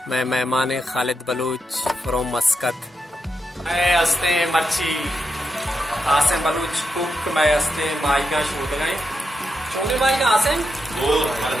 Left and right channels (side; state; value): both; normal; correlation 0.85